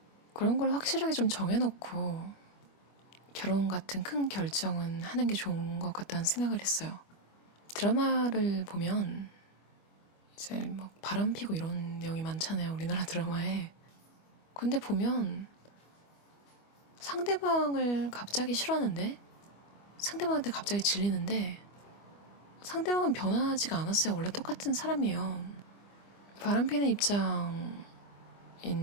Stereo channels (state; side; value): late; right; 25 ms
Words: 그런 걸 확실하게 좀 정해놓고 결혼 같은 큰 결정은 하는 게 좋은 것 같다는 생각을 했어요. 드라마를 보면 이제 막 바람 피고 이런 내용이 많잖아요, 우리나라 드라마에. 근데 보면 상대방을 갑자기 싫어하는데 상대방한테 갑자기 질리는데 상대방은 변하지가 않았어요. 원래 똑같은 사람이에요. 바람 피는 입장인